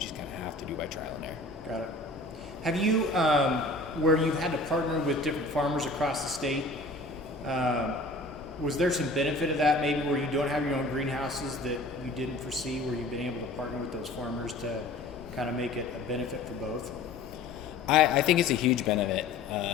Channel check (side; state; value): right; quieter; 3.0 dB